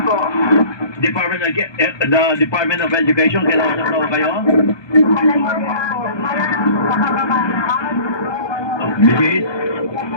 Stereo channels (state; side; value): late; right; 1.2 ms